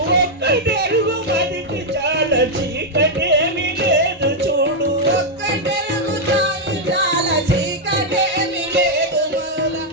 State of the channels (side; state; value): both; normal; correlation -0.02